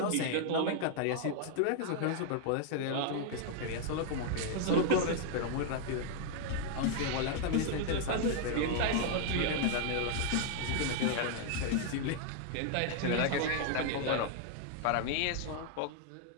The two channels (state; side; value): different; both; correlation 0.00